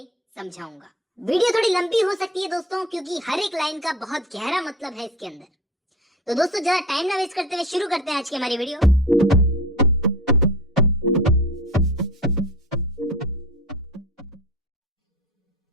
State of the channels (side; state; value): both; normal; correlation 0.35